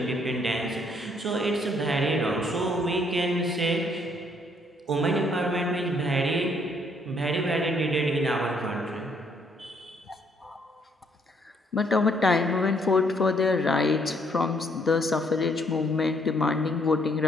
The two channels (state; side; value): normal; both; correlation 0.68